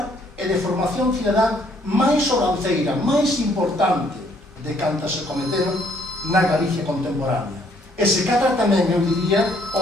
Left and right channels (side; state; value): both; normal; correlation 0.66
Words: e de formación cidadá máis sobranceira, máis importante de cantas se cometeron na Galicia contemporánea. E se cadra tamén, eu diría,